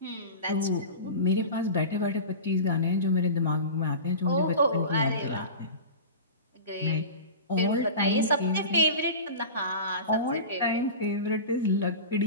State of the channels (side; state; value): both; inverted; correlation -0.31